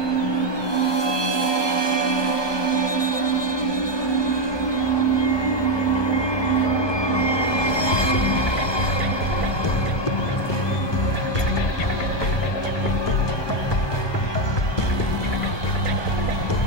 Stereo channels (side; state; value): right; late; 1.2 ms